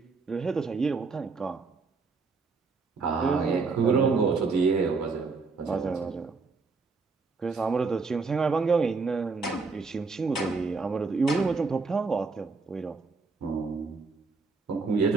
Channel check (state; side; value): quieter; left; 4.4 dB